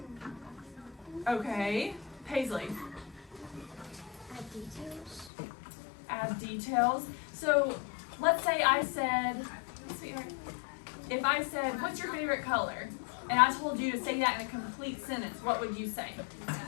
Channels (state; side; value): drops out; right; at 5.3 s